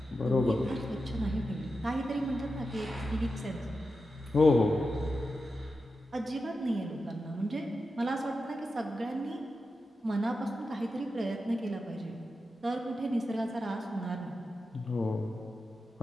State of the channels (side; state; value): both; normal; correlation 0.90